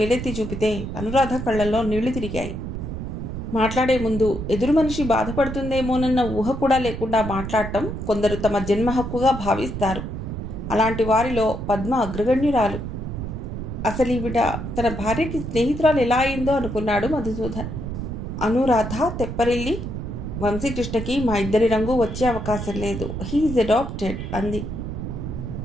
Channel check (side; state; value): right; noise; rumble, 6 dB below the sound